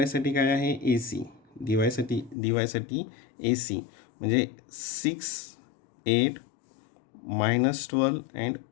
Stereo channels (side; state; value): right; drops out; at 2.4 s